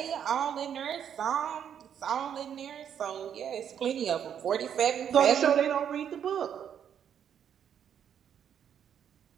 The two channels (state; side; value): quieter; left; 8.7 dB